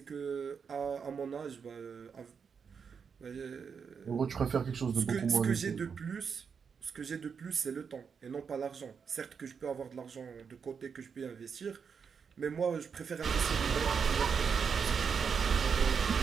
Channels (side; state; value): left; quieter; 6.3 dB